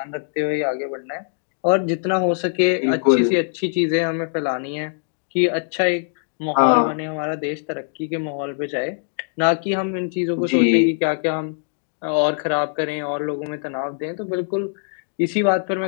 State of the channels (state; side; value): silent; right; 64 dB below the other